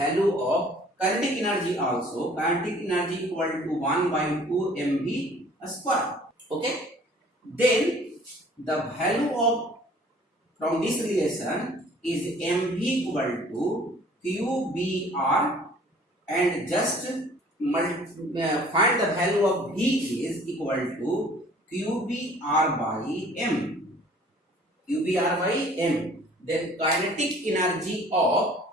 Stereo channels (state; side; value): normal; both; correlation 0.53